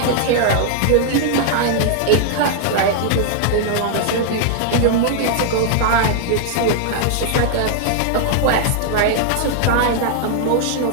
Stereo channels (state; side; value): different; both; correlation -0.01